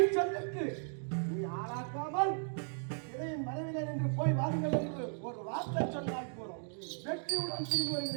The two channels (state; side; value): silent; left; 54 dB below the other